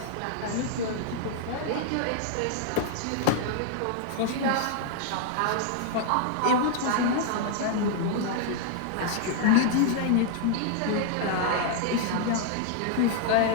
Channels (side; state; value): both; different; correlation -0.01